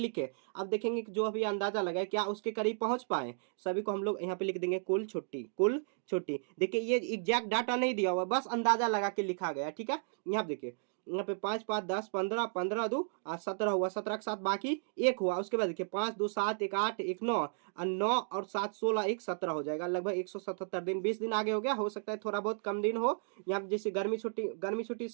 अब देखेंगे कि जो अभी अंदाजा लगाए क्या उसके करीब पहुंच पाए, सभी को हम लोग यहाँ पे लिख देंगे कुल छुट्टी, कुल छुट्टी। देखिए ये एग्जैक्ट डाटा नहीं दिया हुआ, बस अंदाजा लगा के लिखा गया। ठीक है, यहाँ देखिए यहाँ पे 5 5 10 15 15 2 17 हुआ, 17 के साथ बाकी एक हुआ। उसके बाद देखिए 5 2 7 1 8 1 9 और 9 और 7 16 1 17 हो जाएगा, लगभग 177 दिन, 20 दिन आगे हो गया, हो सकता है थोड़ा बहुत कम दिन हो। यहाँ पे जैसे गर्मी छुट्टी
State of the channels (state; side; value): silent; left; digital silence